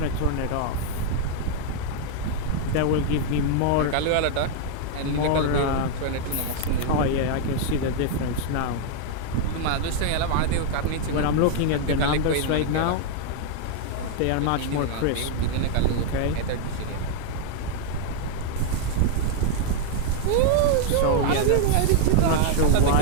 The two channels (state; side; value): different; both; correlation 0.00